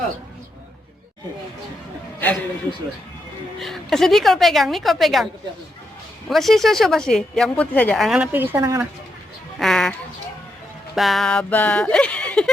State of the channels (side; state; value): both; normal; correlation 0.82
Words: Kasih Nicole pegang, Nicole pegang. Masih susu masih, yang putih saja. Anak pergi sana, anak. Ah, Baba.